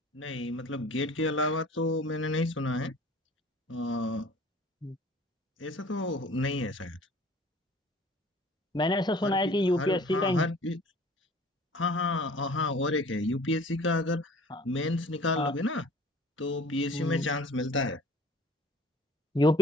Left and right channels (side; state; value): both; normal; correlation 0.49